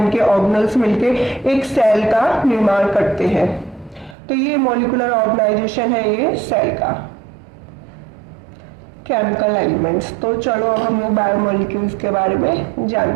ऑर्गेनल्स मिलके एक सेल का निर्माण करते हैं। तो ये मॉलिक्यूलर ऑर्गेनाइजेशन है ये सेल का। केमिकल एलिमेंट्स, तो चलो अब हम लोग बायोमोलिक्यूल्स के बारे में जान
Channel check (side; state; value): left; drops out; at 4.2 s